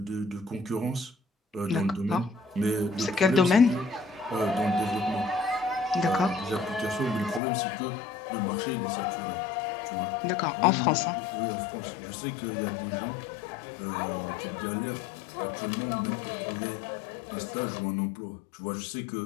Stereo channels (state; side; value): drops out; right; at 7.4 s